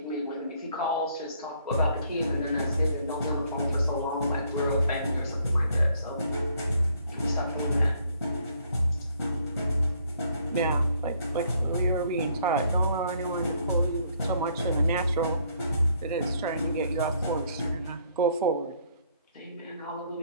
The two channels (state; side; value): inverted; both; correlation -0.66